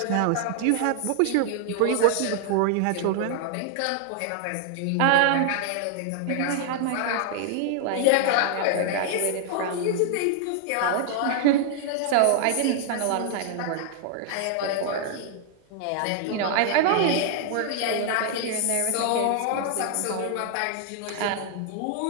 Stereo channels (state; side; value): different; both; correlation 0.00